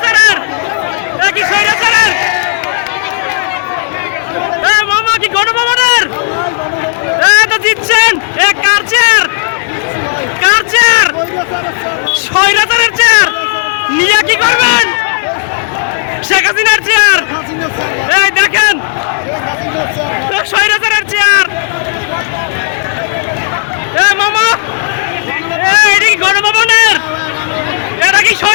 একই স্বৈরাচারের মামা কি গণভবনের তো জিতছেন কার চেয়ার স্বৈরাচারের চেয়ার নিয়ে কি করবেন শেখ হাসিনার চেয়ার এই দেখেন স্বৈরাচারের চেয়ার মামা এটা কি গণভবনের এটা কি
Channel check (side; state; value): right; silent; digital silence